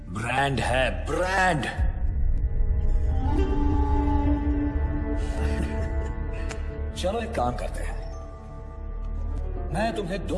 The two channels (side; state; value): both; identical; correlation 1.00